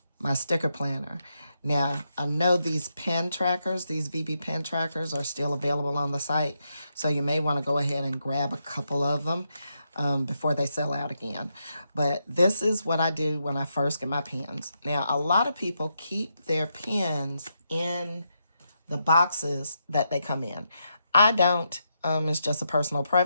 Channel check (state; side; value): inverted; both; correlation -0.82